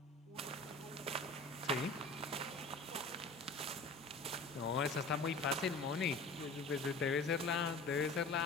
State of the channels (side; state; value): right; quieter; 3.2 dB